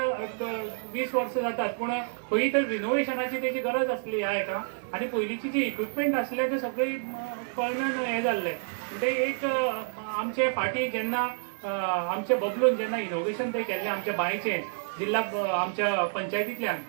20 वर्सां जातात पूण खंय तर रिनोवेशनाची तेजी गरज आसली ह्या हेका आनी पयलींची जी इक्विपमेंट आसले ते सगळे कळमेन हें जाल्ले. म्हणजे एक आमचे फाटी जेन्ना आमचे बबलून जेन्ना इनोव्हेशन ते केल्लें आमच्या बायचें जिल्हा आमच्या पंचायतींतल्यान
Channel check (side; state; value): left; silent; digital silence